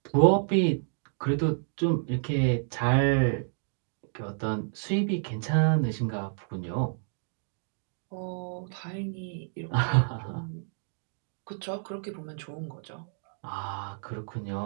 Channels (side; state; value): left; silent; digital silence